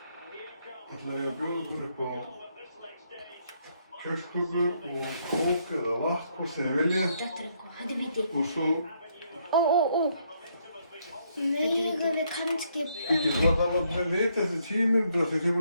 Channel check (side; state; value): both; inverted; correlation -0.72